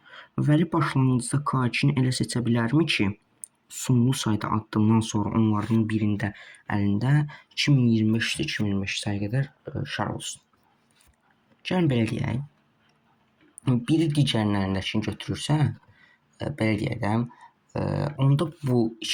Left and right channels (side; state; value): both; identical; correlation 1.00